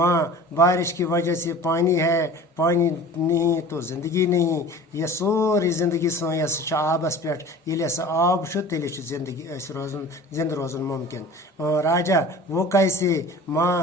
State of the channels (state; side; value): normal; both; correlation 0.41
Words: بارش کی وجہ سے پانی ہے پانی نہیں تو زندگی نہیں یہ سوری زندگی سو یہ آبس پہ یل آب تیل زندگی روزن زندہ روزن ممکن راجا وہ کیسے